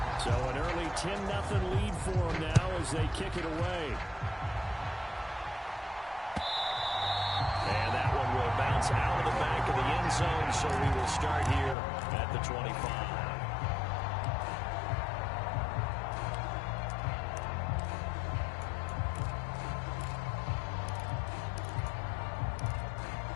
So an early 10-0 lead for them now as they kick it away. And that one will bounce out of the back of the end zone, so we will start here at the 25.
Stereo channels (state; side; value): drops out; right; at 11.8 s